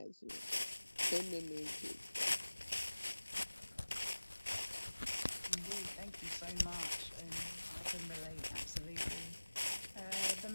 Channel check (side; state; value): both; inverted; correlation -1.00